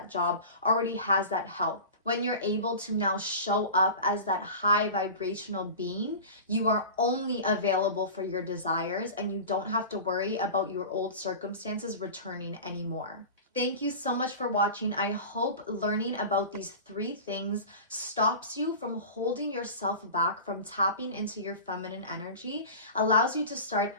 job, already has that health. When you're able to now show up as that high vibrational being, you are only available for your desires and you don't have to worry about your old circumstances returning anymore. Thank you so much for watching. I hope learning about these 3 things stops you from holding yourself back from tapping into your feminine energy, allows you to start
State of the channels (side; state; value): both; inverted; correlation -0.33